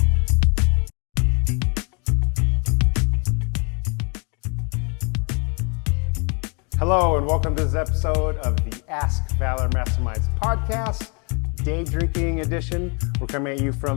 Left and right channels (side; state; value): right; quieter; 34.7 dB